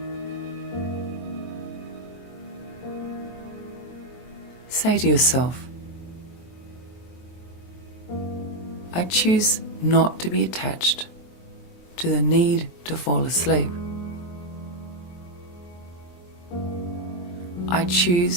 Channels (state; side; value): late; right; 23 ms